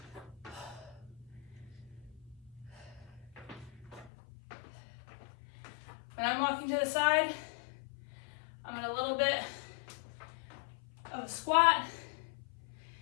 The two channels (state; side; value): drops out; right; at 4.1 s